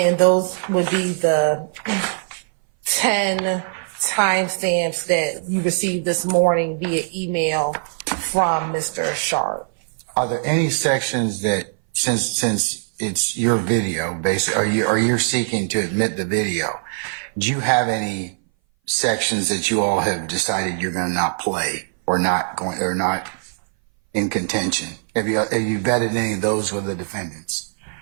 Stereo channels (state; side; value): silent; left; 60 dB below the other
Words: those would be the 10 timestamps that you received this morning via email from Mr. Sharp. Are there any sections that, since it's your video, basically, or you're seeking to admit the video, do you have any sections that you all have decided you're going to not play or not in contention? Have you vetted any of those with the defendants?